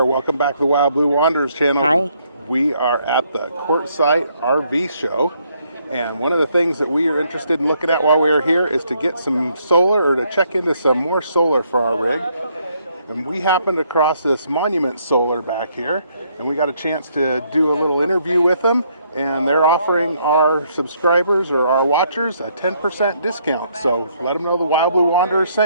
welcome back to the Wild Blue Wanderers channel. Hi. We are at the Quartzsite RV Show, and one of the things that we are interested in looking at while we are here is to get some solar, or to check into some more solar for our rig. And we happened across this Monument Solar back here, and we got a chance to do a little interview with them, and they're offering our subscribers or our watchers a 10% discount. So let them know the Wild Blue Wanderers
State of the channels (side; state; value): both; inverted; correlation -0.71